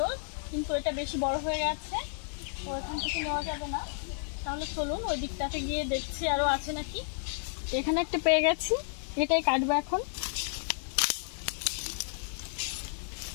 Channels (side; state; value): right; silent; digital silence